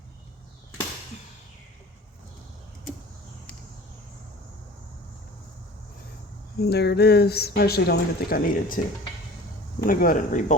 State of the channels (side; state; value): both; normal; correlation 0.42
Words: And there it is. I actually don't even think I needed to. I'm gonna go ahead and